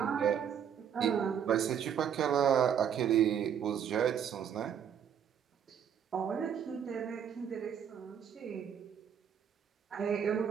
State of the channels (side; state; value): left; quieter; 8.4 dB